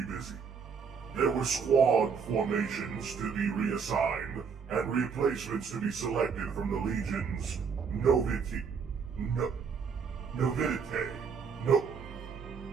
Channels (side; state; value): left; quieter; 6.0 dB